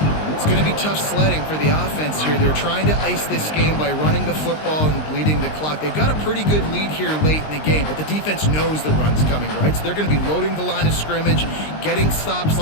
It's going to be tough sledding for the offense here. They're trying to ice this game by running the football and bleeding the clock. They've got a pretty good lead here late in the game, but the defense knows the run's coming, right? So they're going to be loading the line of scrimmage, getting stops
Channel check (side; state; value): right; late; 19 ms